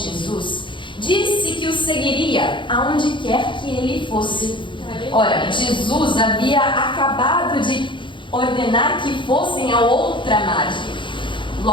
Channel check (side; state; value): right; late; 0.24 ms